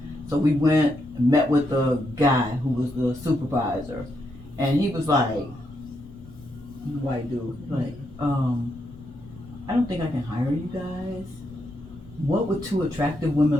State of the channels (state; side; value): noise; left; rumble, 19 dB below the sound